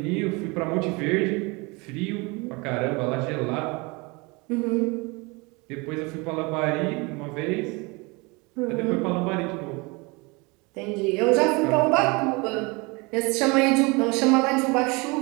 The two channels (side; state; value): left; quieter; 27.1 dB